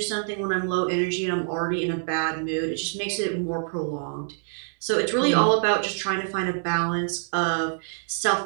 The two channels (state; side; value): silent; left; digital silence